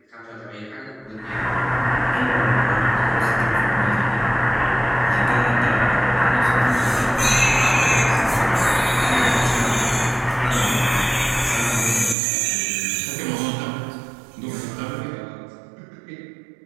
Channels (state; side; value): drops out; left; at 12.2 s